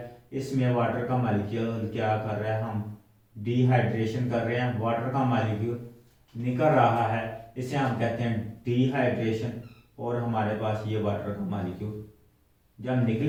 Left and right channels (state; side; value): identical; both; correlation 1.00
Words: इसमें वाटर का मॉलिक्यूल क्या कर रहा है, हम डिहाइड्रेशन कर रहे हैं, वाटर का मॉलिक्यूल निकल रहा है, इसे हम कहते हैं डिहाइड्रेशन। और हमारे पास ये वाटर का मॉलिक्यूल जब